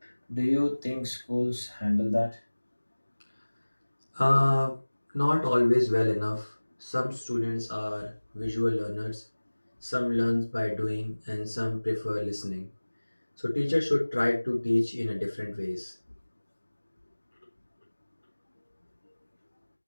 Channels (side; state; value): both; inverted; correlation -1.00